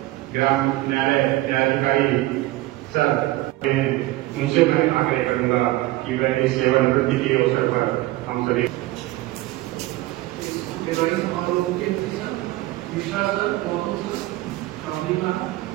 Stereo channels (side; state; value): left; quieter; 18.1 dB